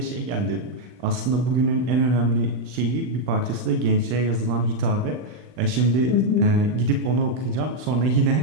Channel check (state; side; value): late; left; 39 ms